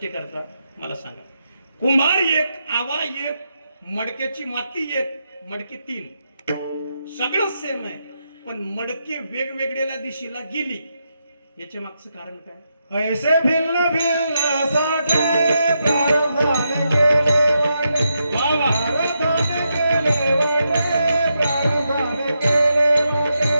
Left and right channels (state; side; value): inverted; both; correlation -0.83